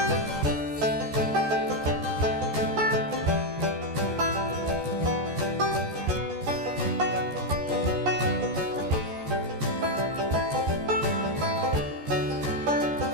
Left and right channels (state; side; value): late; left; 14 ms